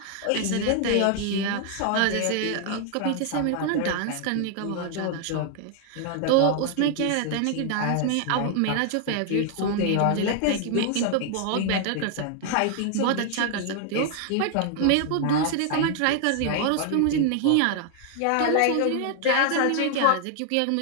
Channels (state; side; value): different; both; correlation 0.00